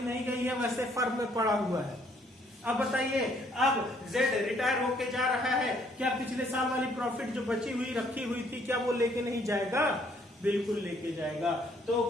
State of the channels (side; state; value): both; normal; correlation 0.65